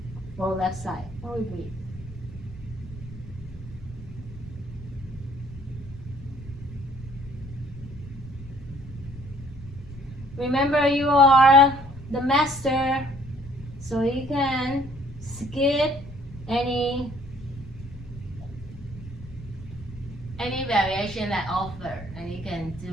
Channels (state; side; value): noise; left; rumble, 16 dB below the sound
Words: or left side. Or we breathe. Remember, you are the master, so you can skip any variation that offer, and you can